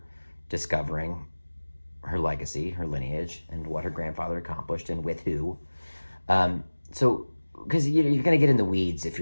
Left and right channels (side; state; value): both; inverted; correlation -1.00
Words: discovering her legacy, her lineage, and what her grandfather accomplished and with who. So, because you're going to get in the weeds if